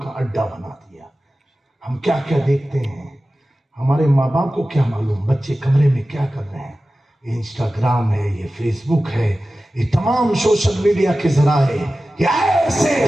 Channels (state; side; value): normal; both; correlation 0.95